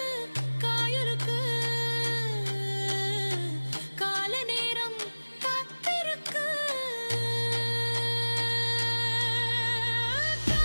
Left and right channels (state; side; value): inverted; both; correlation -1.00